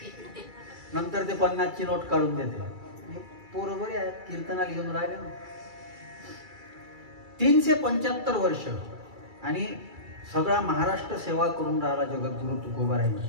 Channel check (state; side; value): late; left; 2.3 ms